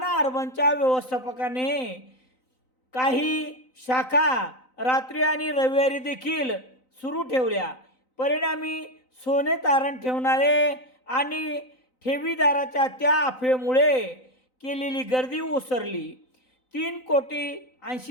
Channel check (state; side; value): late; right; 3.9 ms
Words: अर्बनच्या व्यवस्थापकाने काही शाखा रात्री आणि रविवारी देखील सुरू ठेवल्या। परिणामी सोने तारण ठेवणारे आणि ठेवीदाराच्या त्या अफवेमुळे केलेली गर्दी ओसरली।